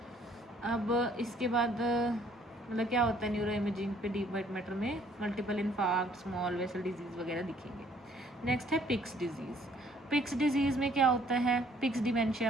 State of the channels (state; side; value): normal; both; correlation 0.61